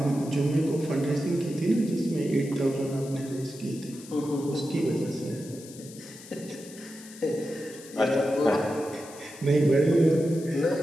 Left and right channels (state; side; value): noise; left; hiss, 18 dB below the sound